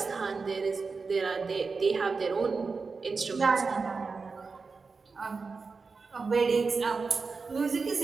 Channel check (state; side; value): quieter; left; 4.5 dB